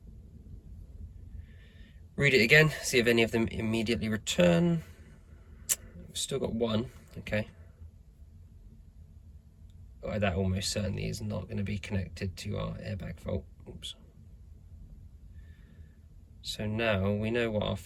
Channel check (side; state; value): both; identical; correlation 1.00